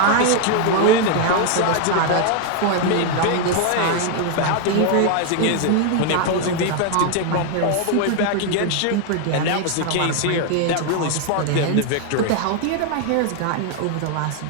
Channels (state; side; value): different; both; correlation 0.00